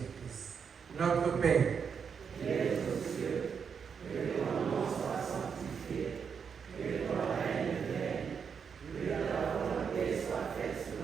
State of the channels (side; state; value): left; quieter; 6.6 dB